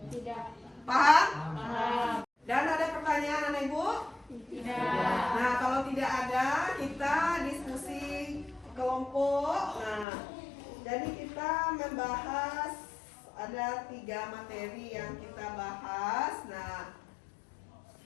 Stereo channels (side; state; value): right; drops out; at 10.1 s